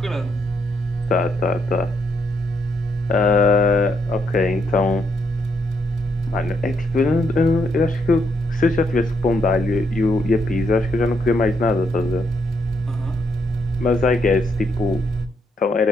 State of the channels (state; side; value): normal; both; correlation 0.76